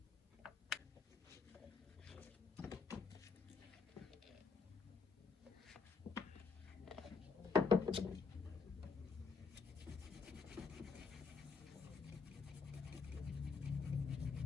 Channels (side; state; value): right; quieter; 5.3 dB